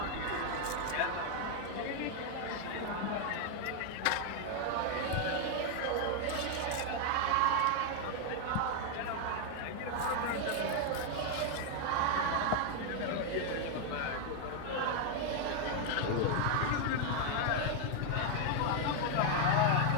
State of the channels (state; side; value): different; both; correlation 0.01